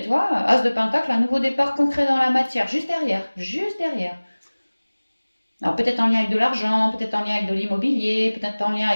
tu vois, As de Pentacle, un nouveau départ concret dans la matière, juste derrière, juste derrière. Alors peut-être en lien avec de l'argent, peut-être en lien avec de l'immobilier, peut-être en lien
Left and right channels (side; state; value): both; inverted; correlation -1.00